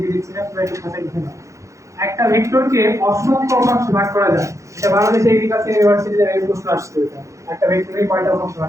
দিচ্ছি না, তোমরা একটু খাতায় লিখে নাও। একটা ভেক্টরকে অসংখ্য উপাংশে ভাগ করা যায়, এটা বাংলাদেশ এগ্রিকালচার ইউনিভার্সিটিতে এই প্রশ্ন আসছে, এটা একটা ভেক্টরকে কয়টা উপাংশে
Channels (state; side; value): late; left; 0.15 ms